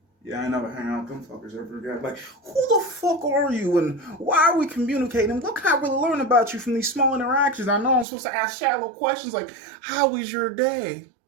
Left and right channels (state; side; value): drops out; left; at 8.1 s